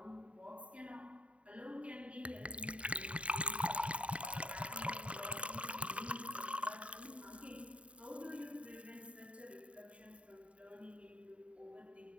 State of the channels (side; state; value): left; late; 0.063 ms